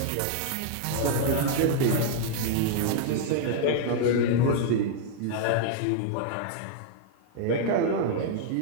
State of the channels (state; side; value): different; both; correlation -0.01